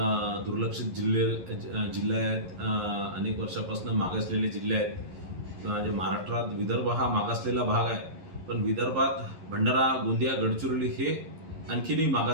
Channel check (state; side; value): late; left; 11 ms